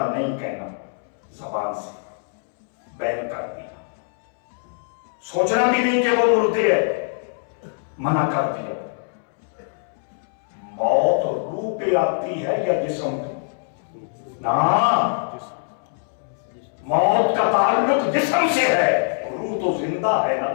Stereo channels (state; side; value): silent; right; 63 dB below the other